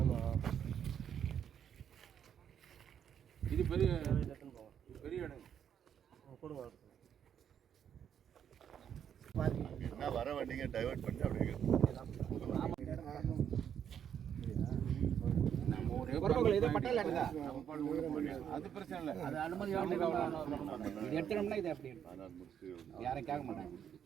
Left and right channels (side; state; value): left; quieter; 8.7 dB